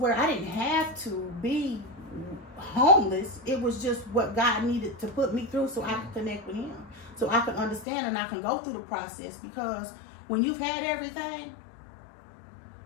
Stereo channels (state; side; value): drops out; right; at 7.9 s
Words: I didn't have to be homeless. It was just what God needed to put me through so I could connect with him, so I could understand and I can go through the process. Because when you've had everything,